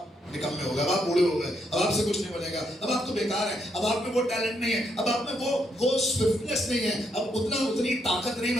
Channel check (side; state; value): both; normal; correlation 0.77